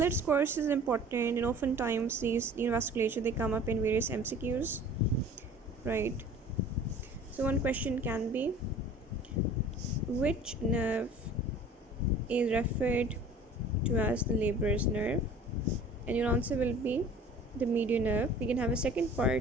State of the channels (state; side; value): normal; both; correlation 0.46